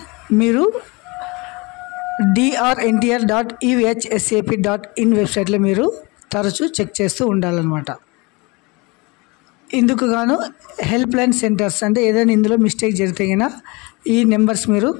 మీరు drntr.ehsap.in వెబ్సైట్లో మీరు తరచూ చెక్ చేస్తూ ఉండాలన్నమాట. ఇందుకు గాను హెల్ప్ లైన్ సెంటర్స్ అంటే ఏదైనా ఇందులో మిస్టేక్ జరిగితే అయినా ఈ నెంబర్స్ మీరు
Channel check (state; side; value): quieter; right; 26.3 dB